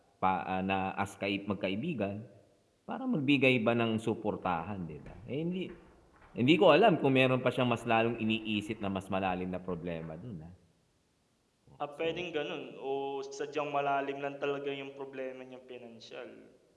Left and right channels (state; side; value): identical; both; correlation 1.00